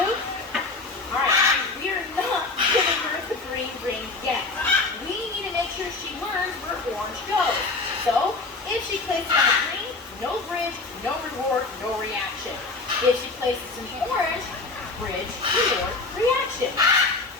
Alright, we are not giving her the green ring yet. We need to make sure she learns where orange goes. So, if she places on the green, no bridge, no reward, no reaction. If she places an orange, bridge, reward, reaction.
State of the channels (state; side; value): quieter; right; 3.6 dB